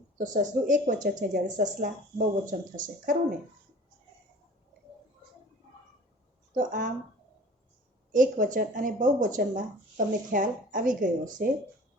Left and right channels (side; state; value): both; normal; correlation 0.45